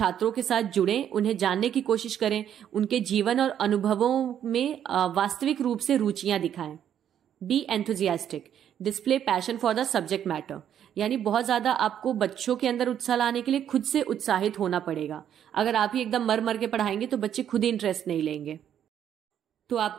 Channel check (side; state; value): left; quieter; 9.7 dB